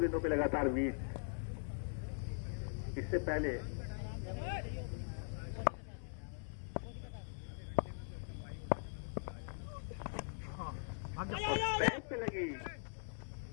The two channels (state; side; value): silent; right; 50 dB below the other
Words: पे लगातार बीट। इससे पहले बैट पे लगी,